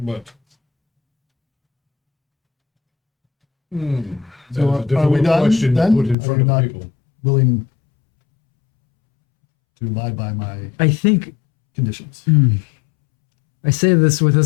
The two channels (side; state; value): right; drops out; at 6.2 s